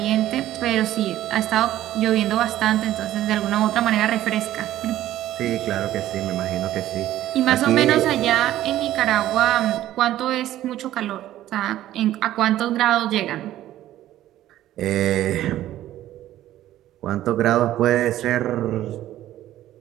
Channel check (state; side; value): quieter; left; 13.5 dB